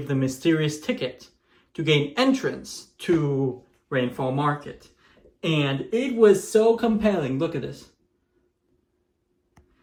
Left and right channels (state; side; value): identical; both; correlation 1.00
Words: the mysterious ticket to gain entrance to Rainfall Market. And it was so compelling. Look at this.